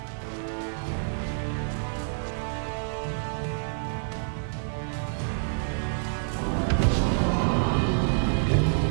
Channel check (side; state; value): left; silent; digital silence